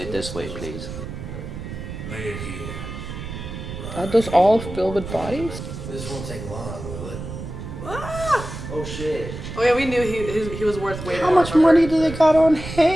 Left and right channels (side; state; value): right; noise; rumble, 9 dB below the sound